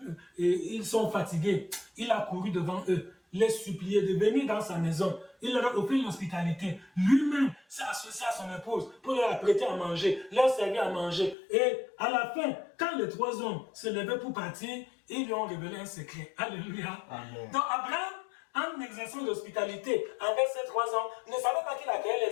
ils sont fatigués. Il a couru devant eux, les supplier de venir dans sa maison. Il leur a offert l'hospitalité. Lui-même s'est associé à son épouse pour leur apprêter à manger, leur servir à manger. Et à la fin, quand les 3 hommes se levaient pour partir, ils lui ont révélé un secret. Alléluia. Amen. Donc Abraham, en exerçant l'hospitalité envers ces 3 hommes, ne savait pas qu'il accueillait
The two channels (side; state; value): right; drops out; at 11.4 s